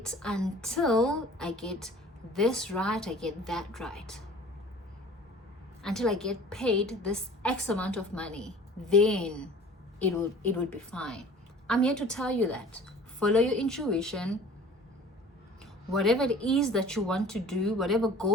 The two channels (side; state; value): both; normal; correlation 0.46